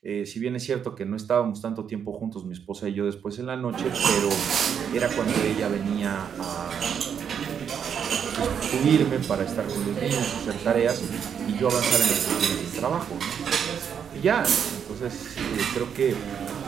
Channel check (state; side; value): quieter; left; 7.8 dB